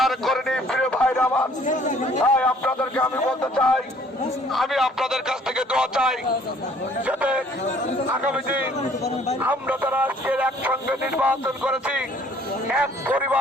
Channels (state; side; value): normal; both; correlation 0.58